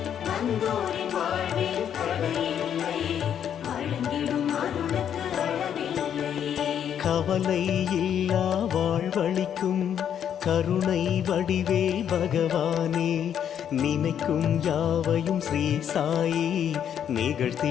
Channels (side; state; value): right; quieter; 9.1 dB